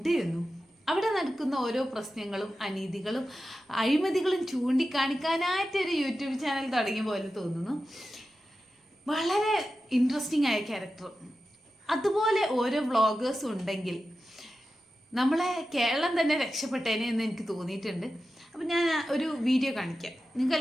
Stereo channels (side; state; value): both; normal; correlation 0.92